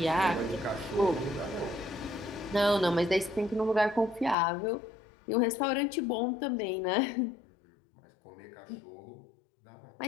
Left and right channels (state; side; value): drops out; right; at 4.4 s